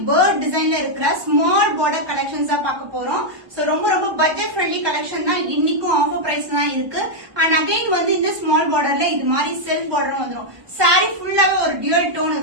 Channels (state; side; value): late; left; 1.2 ms